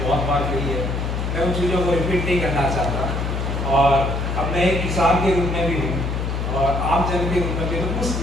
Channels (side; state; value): left; noise; hum, 2 dB below the sound